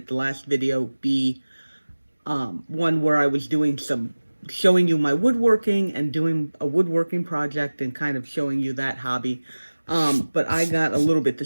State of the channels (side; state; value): both; inverted; correlation -1.00